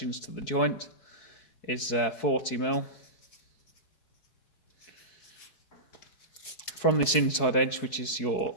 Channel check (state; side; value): late; right; 4.6 ms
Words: to the joint, is 40mm. From this inside edge, which is